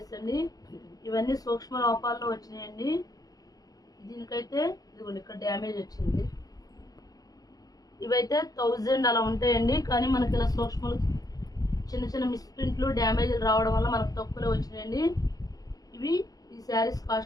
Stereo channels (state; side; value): late; right; 0.18 ms